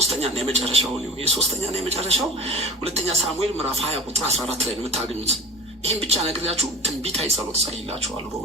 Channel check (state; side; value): normal; both; correlation 0.37